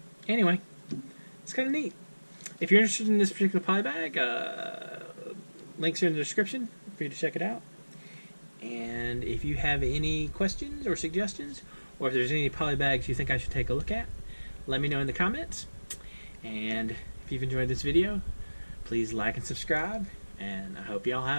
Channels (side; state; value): both; inverted; correlation -1.00